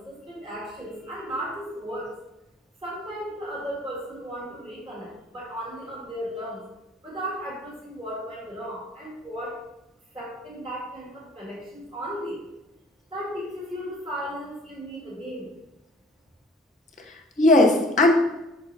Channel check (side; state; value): both; normal; correlation 0.52